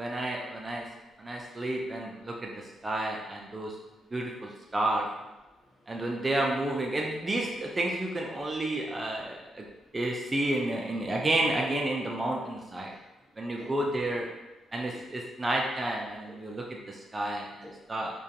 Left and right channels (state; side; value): normal; both; correlation 0.84